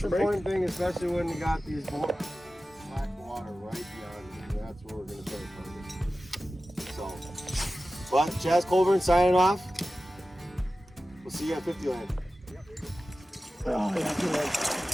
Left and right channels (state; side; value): normal; both; correlation 0.95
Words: break? important thing, especially when you got these black water right beyond you, that's where we're gonna start focusing. So, but Chaz Colburn signing off. We'll see you at 50 land. Oh, yeah, good one.